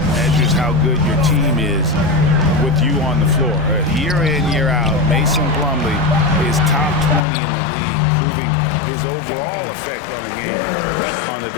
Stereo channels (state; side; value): drops out; right; at 7.2 s